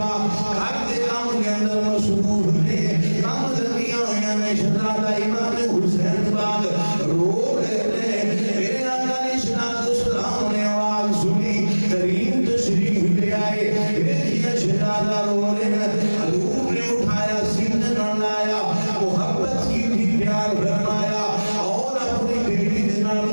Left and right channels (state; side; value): inverted; both; correlation -1.00